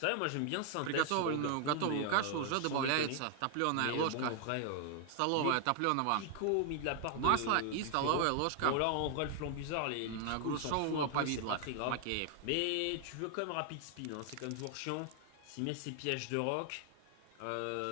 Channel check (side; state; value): both; different; correlation 0.00